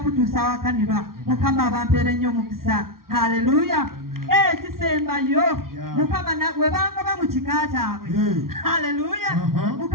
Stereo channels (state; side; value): late; left; 0.93 ms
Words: wakanirwa Mukama abampeere nnyo omukisa haleluya kisembayo Mukama webangoba mu kika kyabwe haleluya